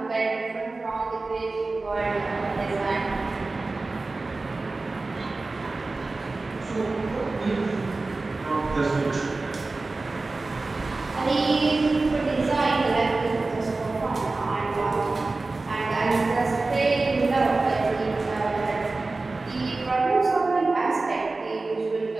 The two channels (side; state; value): left; quieter; 3.4 dB